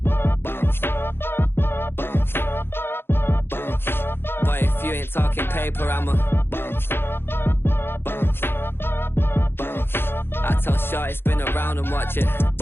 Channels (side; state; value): right; late; 0.11 ms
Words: Boy, if you ain't talking paper, I'm a I tell Shorty spin around and watch it.